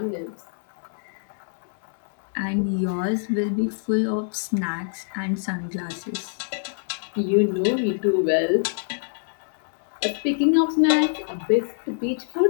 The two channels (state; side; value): silent; right; 62 dB below the other